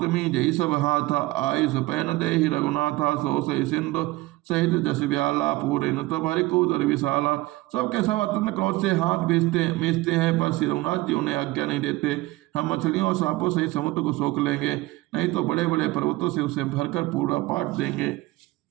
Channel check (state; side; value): quieter; left; 19.8 dB